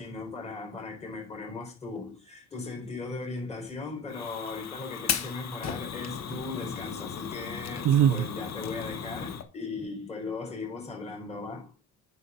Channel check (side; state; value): both; normal; correlation 0.34